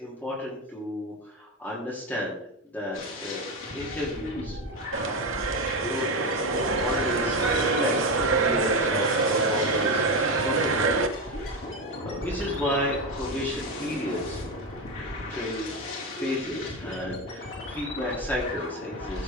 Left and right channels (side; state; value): both; normal; correlation 0.15